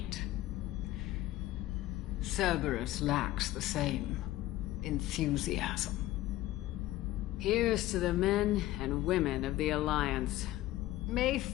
Cerberus lacks the same enthusiasm. Here's to the men and women of the Alliance. May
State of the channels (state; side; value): quieter; right; 15.8 dB